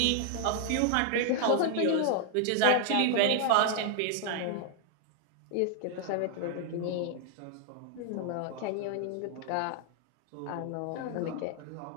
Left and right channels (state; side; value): different; both; correlation 0.00